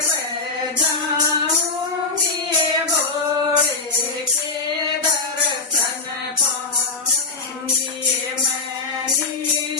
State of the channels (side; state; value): right; quieter; 4.1 dB